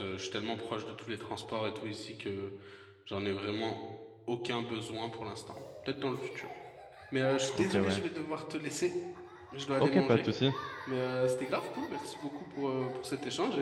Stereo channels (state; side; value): identical; both; correlation 1.00